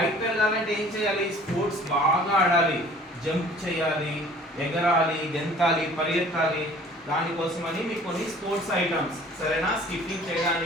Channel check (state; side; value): normal; both; correlation 0.50